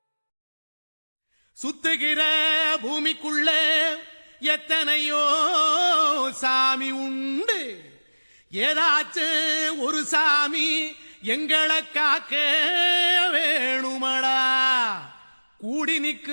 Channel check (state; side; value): inverted; both; correlation -1.00